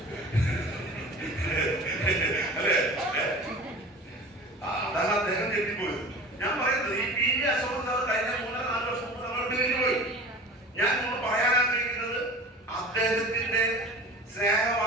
അല്ലേ? അതാണ് അദ്ദേഹം തെറ്റിപ്പോയത്. ഞാൻ പറയുന്നത് ഈ പി വി അശോകൻ സാർ കഴിഞ്ഞ 3-4 വർഷം മുമ്പ് നമ്മൾ പോയി. ഞാൻ നമ്മൾ പറയാൻ ആഗ്രഹിക്കുന്നത് അദ്ദേഹത്തിന്റെ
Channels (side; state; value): both; normal; correlation 0.38